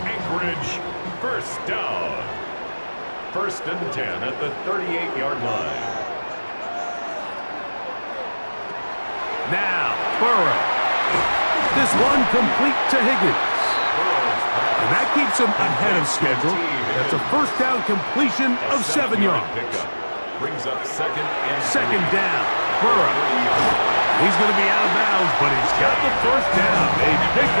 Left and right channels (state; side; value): inverted; both; correlation -1.00